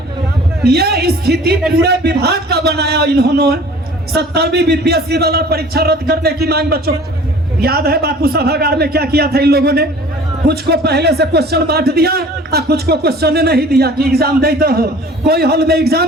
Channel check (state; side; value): normal; both; correlation 0.47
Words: ये स्थिति पूरे विभाग का बनाया इन्होंने। 70वीं बीपीएससी वाला परीक्षा रद्द करने की मांग बच्चों याद है बापू सभागार में क्या किया था इन लोगों ने? कुछ को पहले से क्वेश्चन बांट दिया और कुछ को क्वेश्चन नहीं दिया कि एग्जाम देते हो। कोई हॉल में